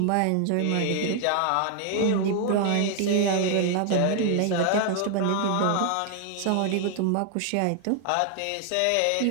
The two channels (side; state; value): both; different; correlation 0.00